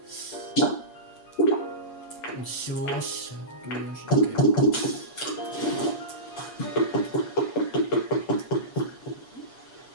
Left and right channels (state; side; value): late; right; 7.3 ms